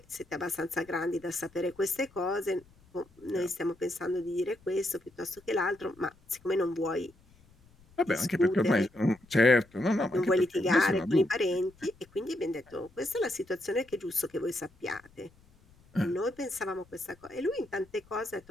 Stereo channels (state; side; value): noise; left; rumble, 29 dB below the sound